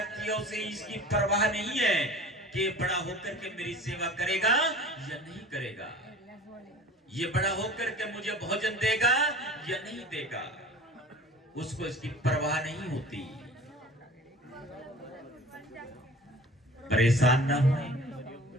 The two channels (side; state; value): both; normal; correlation 0.42